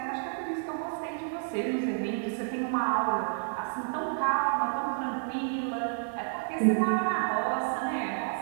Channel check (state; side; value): silent; left; 58 dB below the other